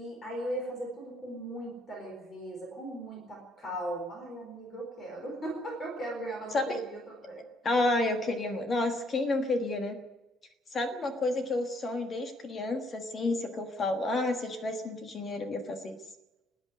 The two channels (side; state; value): both; normal; correlation 0.67